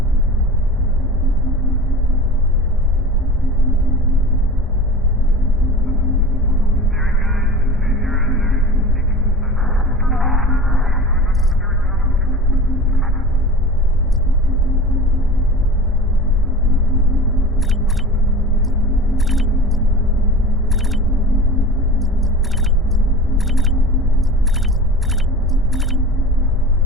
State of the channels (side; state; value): both; normal; correlation 0.35